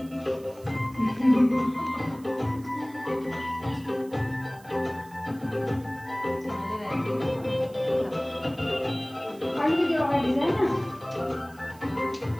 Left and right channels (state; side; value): noise; right; hiss, 25 dB below the sound